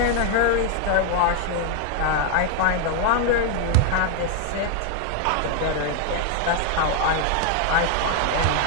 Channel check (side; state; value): both; different; correlation 0.00